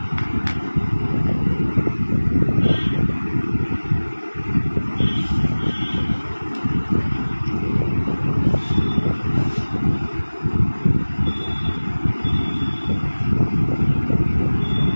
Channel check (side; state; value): both; inverted; correlation -1.00